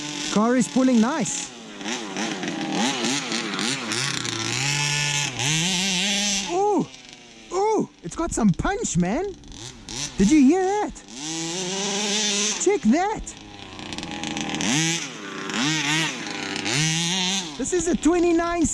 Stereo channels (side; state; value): both; identical; correlation 1.00